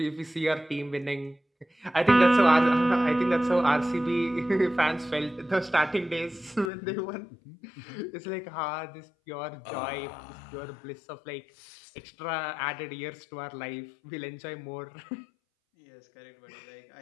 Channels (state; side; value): drops out; right; at 6.7 s